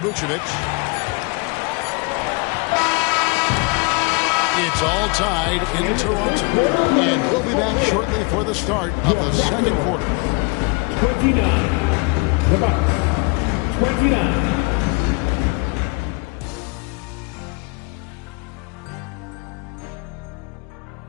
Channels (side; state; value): right; quieter; 29.1 dB